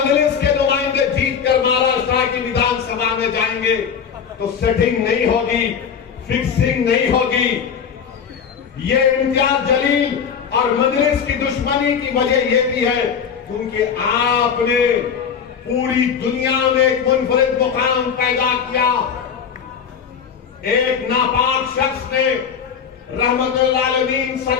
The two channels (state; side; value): quieter; right; 7.1 dB